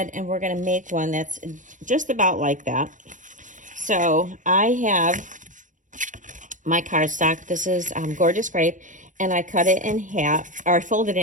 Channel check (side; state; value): left; late; 0.37 ms